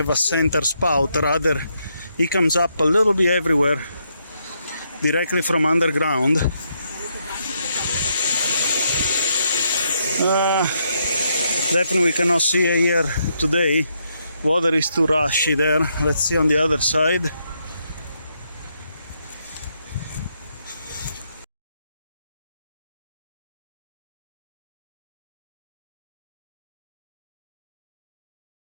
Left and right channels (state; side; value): inverted; both; correlation -0.77